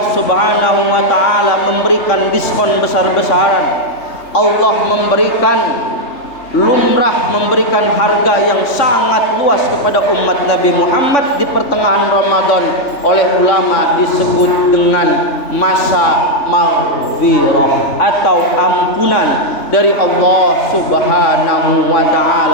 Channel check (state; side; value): late; right; 3.3 ms